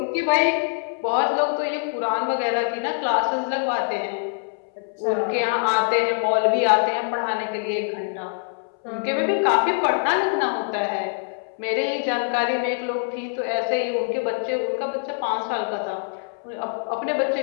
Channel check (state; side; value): silent; right; 63 dB below the other